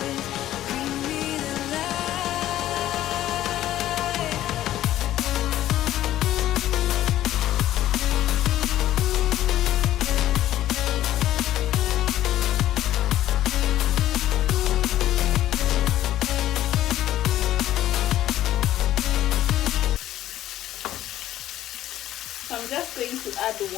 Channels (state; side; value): quieter; right; 13.3 dB